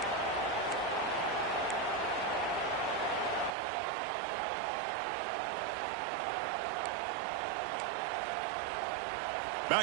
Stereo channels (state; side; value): drops out; left; at 3.5 s